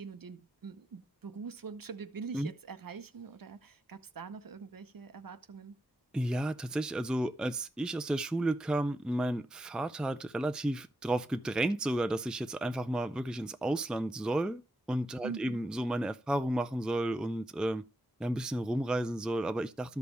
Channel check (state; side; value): normal; both; correlation 0.87